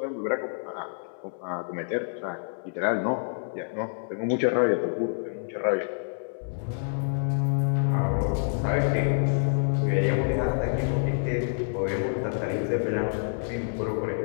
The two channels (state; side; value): silent; right; digital silence